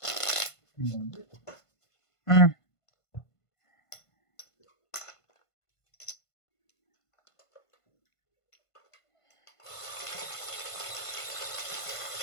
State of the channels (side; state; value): right; late; 1.5 ms